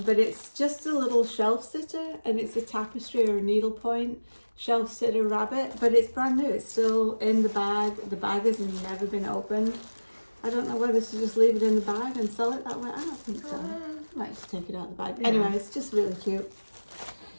but it's just a little shelf sitter, and it's a tapestry or a needlepoint shelf sitter rabbit, but it's brand new. It's still in the bag. The bag has never been opened. I don't know whether to just leave it in the bag and sell it that way. I don't think so. I might just take it out of the bag. Yeah. Anyway, it's just really cute.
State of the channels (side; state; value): both; inverted; correlation -1.00